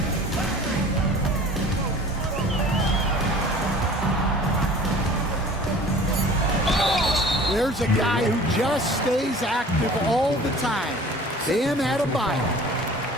There's a guy who just stays active all the time. Bam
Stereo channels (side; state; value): both; normal; correlation 0.45